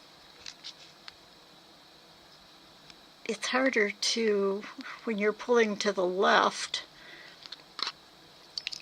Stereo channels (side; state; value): both; identical; correlation 1.00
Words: it's harder to, when you're pulling to the left,